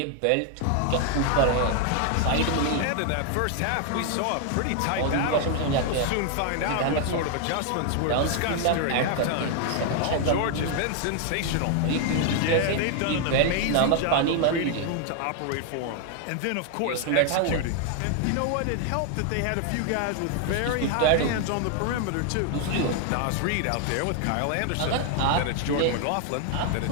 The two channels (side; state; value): both; different; correlation 0.00